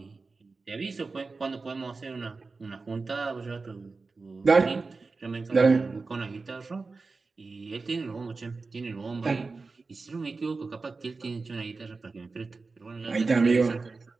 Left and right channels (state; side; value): quieter; left; 4.0 dB